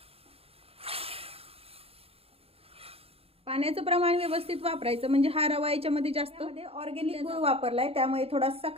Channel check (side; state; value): left; late; 0.28 ms